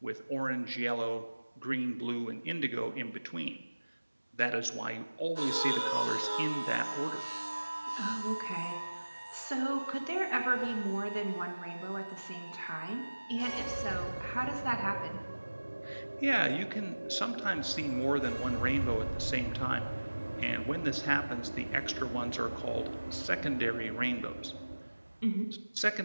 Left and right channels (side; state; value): both; inverted; correlation -1.00